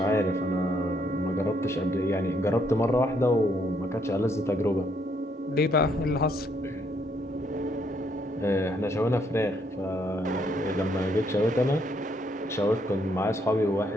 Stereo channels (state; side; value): normal; both; correlation 0.72